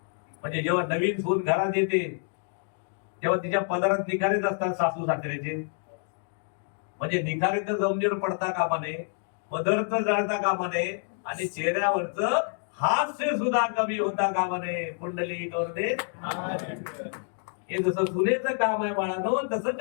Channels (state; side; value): silent; right; 59 dB below the other